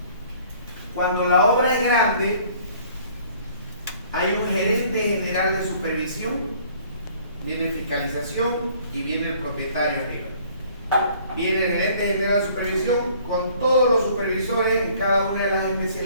Cuando la obra es grande, hay un gerente general de supervisión, viene fiscalización y viene el propietario arriba. Viene el gerente general de supervisión con todos los supervisores en cada una de las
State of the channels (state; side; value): inverted; both; correlation -0.56